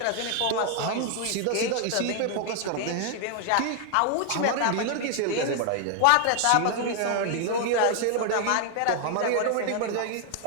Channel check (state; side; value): different; both; correlation 0.00